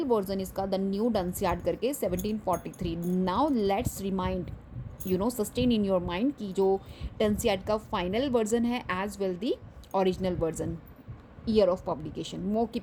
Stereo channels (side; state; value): both; identical; correlation 1.00